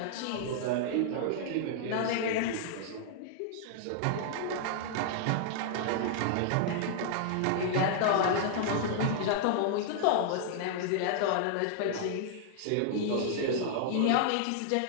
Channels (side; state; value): both; different; correlation -0.01